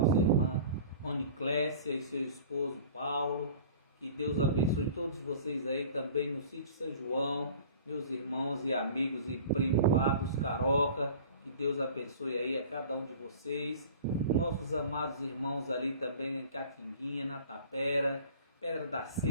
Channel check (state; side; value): inverted; both; correlation -0.44